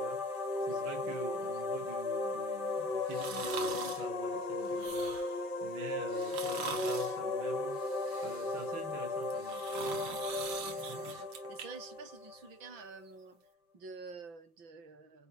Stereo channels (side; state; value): left; late; 5.8 ms